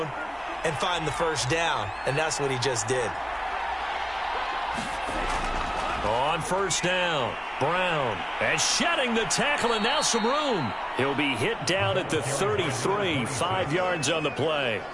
and find the first down. And that's what he just did. On first down, Brown and shedding the tackle, and now some room. He'll be hit down at the 33, 5 yards on the play.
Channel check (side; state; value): both; identical; correlation 1.00